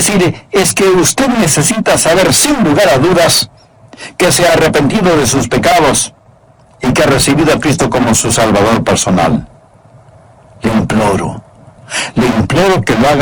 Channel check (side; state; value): both; identical; correlation 1.00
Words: es que usted necesita saber sin lugar a dudas que se ha arrepentido de sus pecados y que ha recibido a Cristo como su Salvador personal. Le imploro que lo